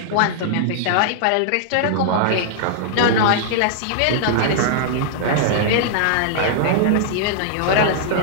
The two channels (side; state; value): both; different; correlation -0.01